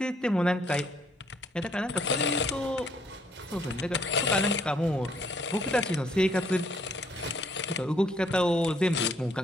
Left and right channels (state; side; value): normal; both; correlation 0.66